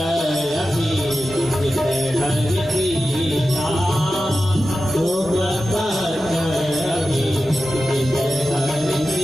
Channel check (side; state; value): both; normal; correlation 0.93